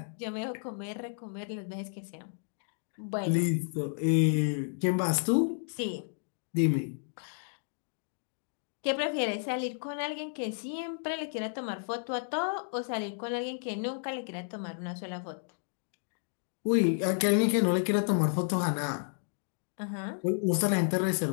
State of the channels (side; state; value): right; silent; digital silence